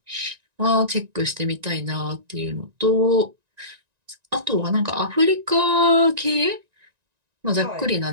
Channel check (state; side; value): late; left; 1.9 ms